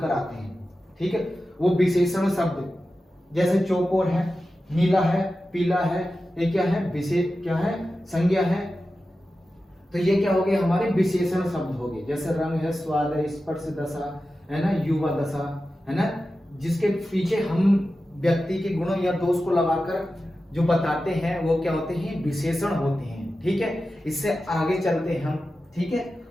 कराते हैं। ठीक है, वो विशेषण शब्द जैसे चौकोर है, नीला है, पीला है, ये क्या है, विशेष क्या है, संज्ञा है। तो ये क्या हो गए हमारे विशेषण शब्द हो गए। जैसे रंग है, स्वाद है, स्पर्श दशा है ना, युवा दशा है ना, जिसके पीछे हम व्यक्ति के गुणों या दोष को लगाकर जो बताते हैं वो क्या होते हैं, विशेषण होते हैं। ठीक है, इससे आगे चलते हैं हम। ठीक है,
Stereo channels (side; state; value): both; normal; correlation 0.93